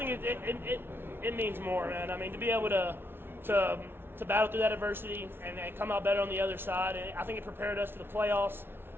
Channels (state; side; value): late; left; 0.11 ms